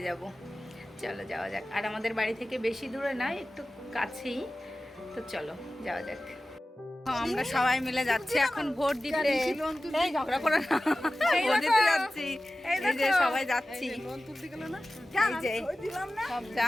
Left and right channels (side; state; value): both; normal; correlation 0.95